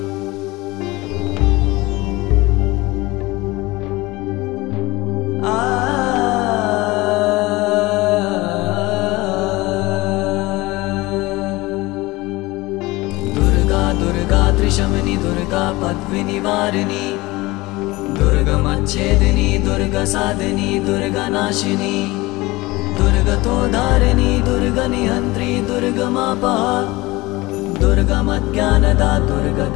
त्रिशमनी दुर्गा पद्विनिवारिणी दुर्गमच्छेदिनी दुर्गसाधिनी दुर्गनाशिनी दुर्गतोधारिणी दुर्गनिहन्त्री दुर्गमापहा दुर्गमज्ञानदा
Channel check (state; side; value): quieter; right; 21.2 dB